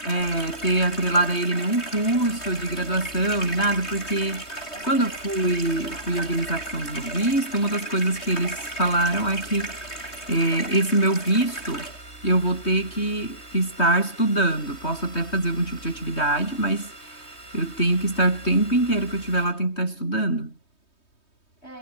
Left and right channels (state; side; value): late; right; 3.2 ms